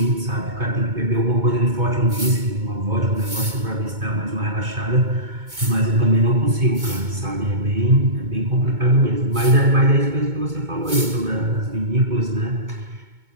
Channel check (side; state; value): left; late; 2.2 ms